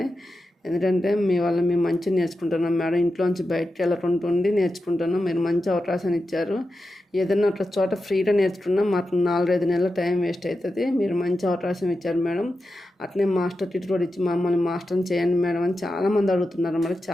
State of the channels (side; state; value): both; normal; correlation 0.90